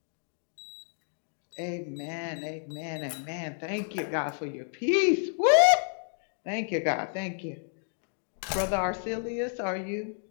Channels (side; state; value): right; silent; digital silence